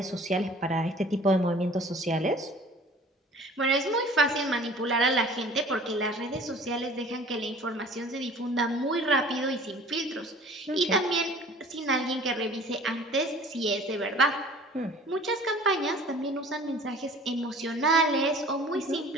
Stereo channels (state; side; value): normal; both; correlation 0.47